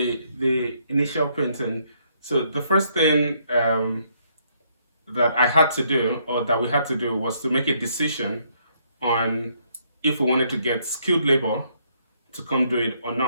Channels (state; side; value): inverted; both; correlation -0.71